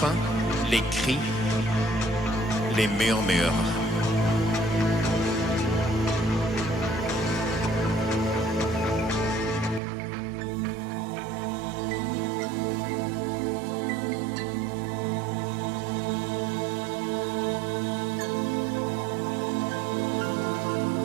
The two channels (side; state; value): left; drops out; at 9.8 s